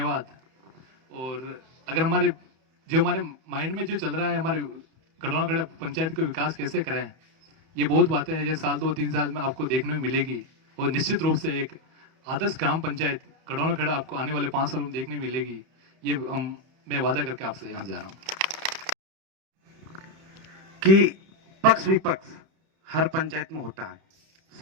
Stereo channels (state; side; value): late; left; 31 ms